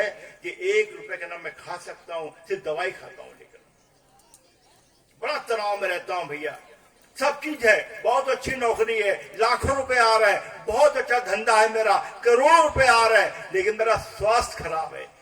कि 1 रुपए का ना मैं खा सकता हूँ, सिर्फ दवाई खाता हूँ, लेकर बड़ा तनाव में रहता हूँ भैया। सब चीज है, बहुत अच्छी नौकरी है, लाखों रुपए आ रहा है, बहुत अच्छा धंधा है मेरा, करोड़ों रुपए आ रहा है, लेकिन मेरा स्वास्थ्य खराब है,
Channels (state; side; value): identical; both; correlation 1.00